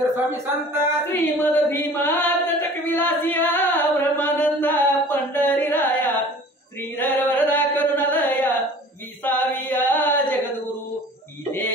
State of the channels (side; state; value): both; normal; correlation 0.45